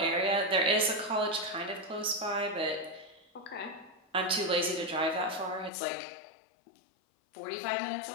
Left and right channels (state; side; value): drops out; right; at 5.7 s